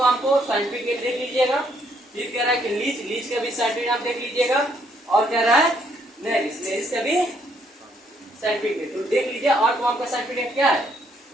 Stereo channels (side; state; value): both; normal; correlation 0.70